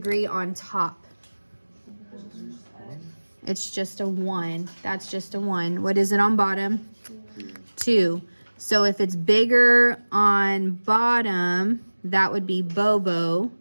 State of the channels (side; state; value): both; inverted; correlation -1.00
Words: on top? It's just a 1. That's just a 1. What is it on bottom? 2. So if it's bigger on bottom, that would be Bobo,